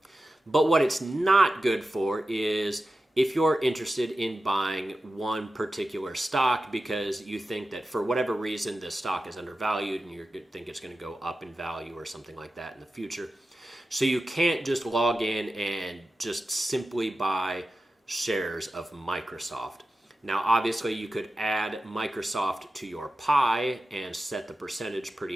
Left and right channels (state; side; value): normal; both; correlation 0.93